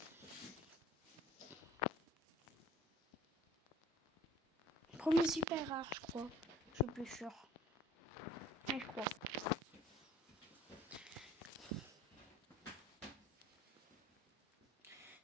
Premier super rare je crois. Je suis plus sûre. Mais je crois.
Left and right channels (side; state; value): both; normal; correlation 0.52